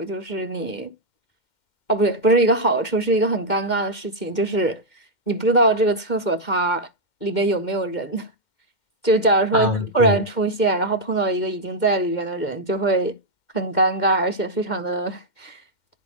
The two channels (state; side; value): late; right; 2.1 ms